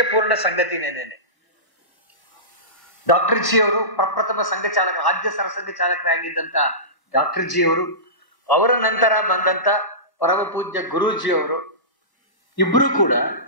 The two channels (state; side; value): late; right; 1.1 ms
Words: ಸಂಗತಿನೇನೆ. ಡಾಕ್ಟರ್ ಜಿ ಅವರು ಪ್ರಪ್ರಥಮ ಸಂಘ ಚಾಲಕ, ರಾಜ್ಯ ಸರಸಂಘ ಚಾಲಕರಾಗಿದ್ದಂತ ಡಾಕ್ಟರ್ ಜಿ ಅವರು, ಅವರ ನಂತರ ಬಂದಂತ ಪರಮ ಪೂಜ್ಯ ಗುರೂಜಿ ಅವರು, ಇಬ್ರು ಕೂಡ